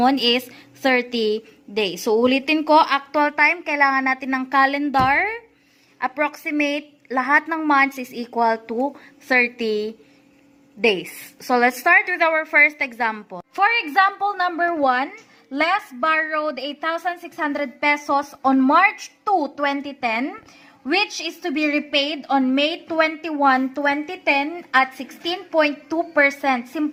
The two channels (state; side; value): identical; both; correlation 1.00